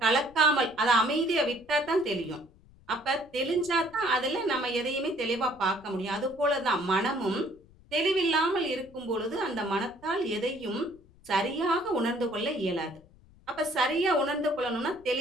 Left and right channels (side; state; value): left; noise; rumble, 26 dB below the sound